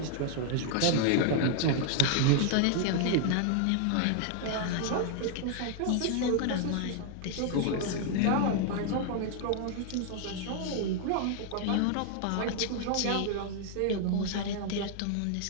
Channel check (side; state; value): both; different; correlation 0.00